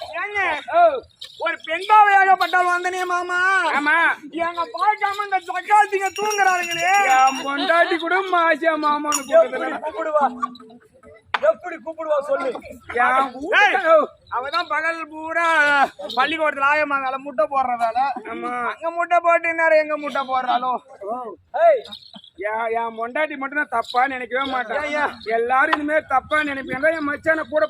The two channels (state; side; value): identical; both; correlation 1.00